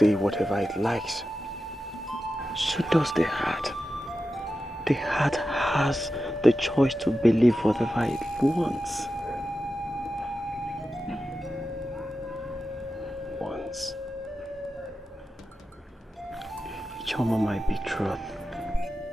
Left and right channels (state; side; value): normal; both; correlation 0.91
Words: whatever it likes. So does the heart. The heart has the choice to believe whatever it wants. Ijoma might be truth.